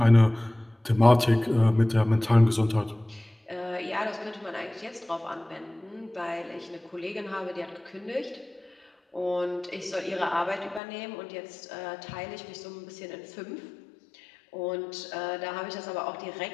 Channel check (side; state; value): right; drops out; at 10.8 s